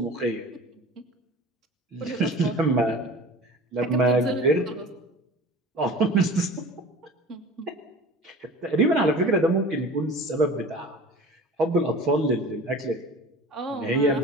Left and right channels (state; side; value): normal; both; correlation 0.39